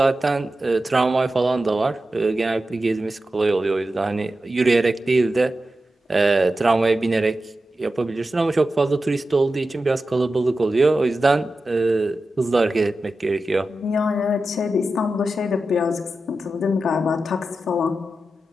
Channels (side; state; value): both; normal; correlation 0.92